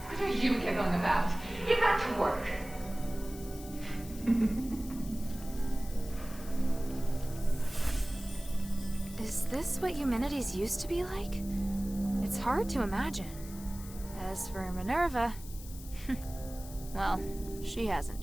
What are you giggling about? Get back to work. Is this what Eumenides used to be like? It's hard to imagine. As for Minerva, well, she hasn't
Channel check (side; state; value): left; noise; hiss, 16 dB below the sound